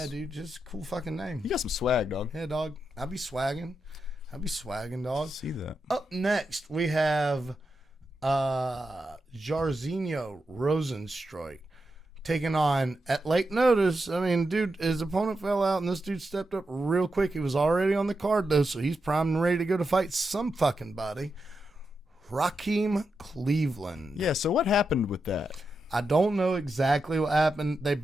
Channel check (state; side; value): normal; both; correlation 0.87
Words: dude. Just a cool fucking name. You got some swag, dog. Yeah, dog. I'll be swagging, dog. See that. Up next, we have Jairzinho Rosenstruik taking on at late notice. I mean, dude, his opponent fell out, and this dude stepped up real quick. He was already on the card, though, so he's primed and ready to go to fight some fucking body. Raheem Cleveland. Yeah, so what happened with that? I don't know exactly what happened. They